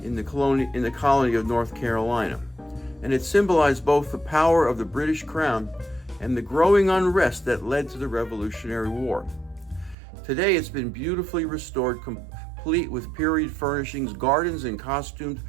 in the colony of North Carolina, and it symbolized both the power of the British crown and the growing unrest that led to the Revolutionary War. Today it's been beautifully restored, complete with period furnishings, gardens, and costumed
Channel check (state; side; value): drops out; left; at 10.0 s